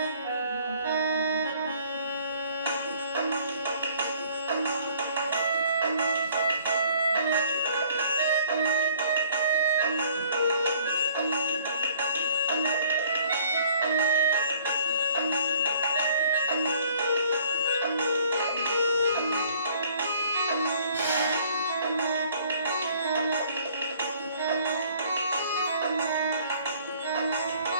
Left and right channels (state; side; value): inverted; both; correlation -0.57